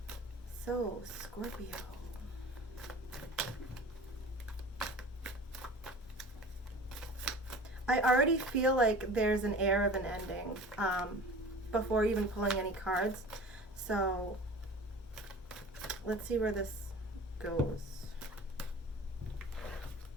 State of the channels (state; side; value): normal; both; correlation 0.40